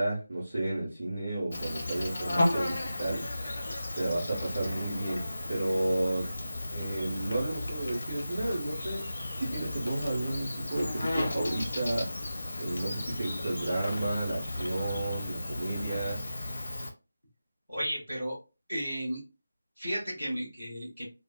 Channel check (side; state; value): both; inverted; correlation -0.93